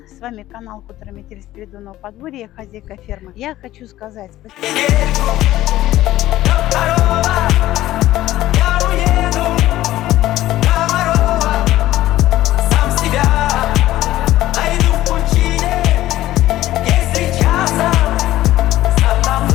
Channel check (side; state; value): right; quieter; 14.9 dB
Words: С вами канал Хутор-Метель Спиридонова подворья, я хозяйка фермы. Я хочу сказать спасибо.